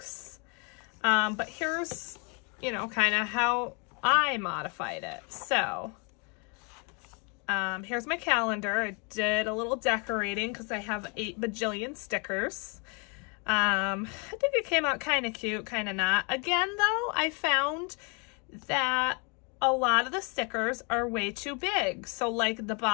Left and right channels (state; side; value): quieter; right; 34.4 dB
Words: But here's, you know, kind of how I modified it. So, here's my calendar. I did a little decorating because I have 8 bajillion stickers. I think it came out kind of cute, kind of not. Again, though, I found that a lot of the stickers are way too big. So like the